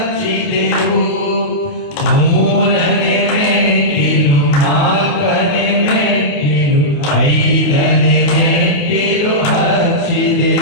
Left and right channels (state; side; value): late; right; 28 ms